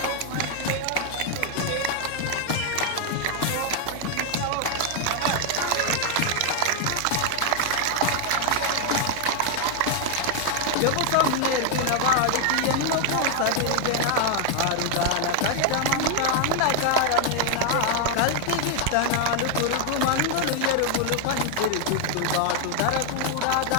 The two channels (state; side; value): different; both; correlation 0.00